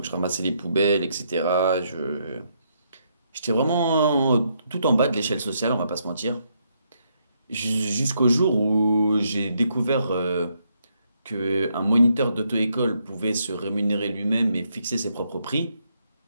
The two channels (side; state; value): both; inverted; correlation -0.76